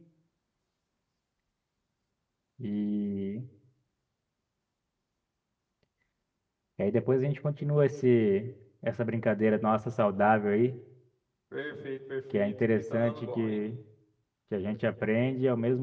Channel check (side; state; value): both; identical; correlation 1.00